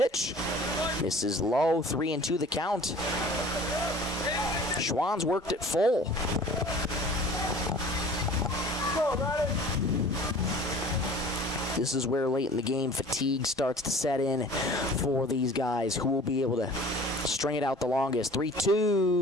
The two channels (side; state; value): both; normal; correlation 0.45